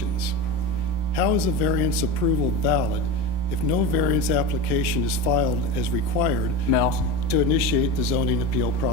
how is a variance approval valid if no variance application is filed as required to initiate the zoning appeal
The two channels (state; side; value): late; right; 32 ms